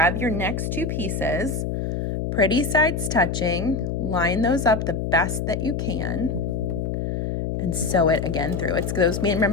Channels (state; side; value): noise; left; hum, 2 dB below the sound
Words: your next 2 pieces, pretty sides touching, line those up the best that you can, and sew it again through. It's those,